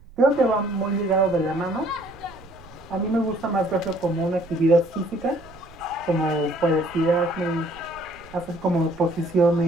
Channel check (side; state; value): right; noise; rumble, 23 dB below the sound